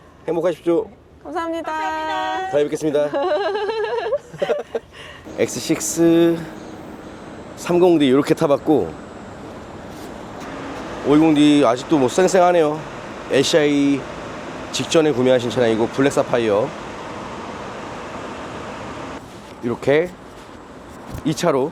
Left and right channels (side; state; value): both; identical; correlation 1.00